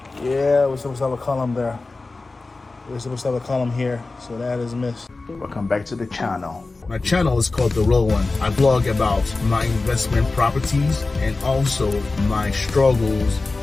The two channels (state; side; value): quieter; right; 3.5 dB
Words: Yeah, we're supposed to have a column there. We're supposed to have a column here, so that is missed. Welcome back to the channel. My channel is called TheRilwan. I blog about my investment properties and also my struggles,